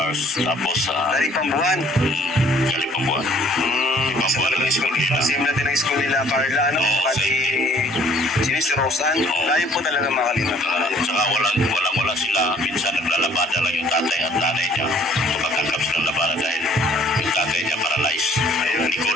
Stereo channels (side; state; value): both; normal; correlation 0.58